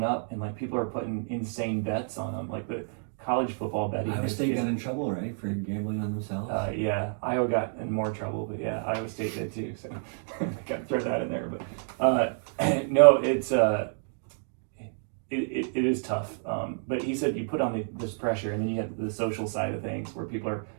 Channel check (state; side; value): silent; left; 58 dB below the other